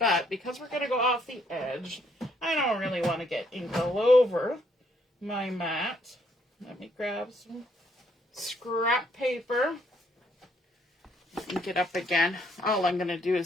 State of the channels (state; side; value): normal; both; correlation 0.70